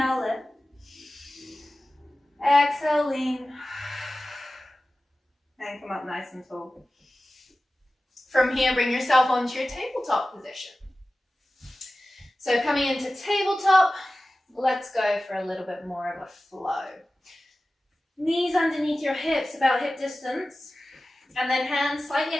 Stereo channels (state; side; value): normal; both; correlation 0.96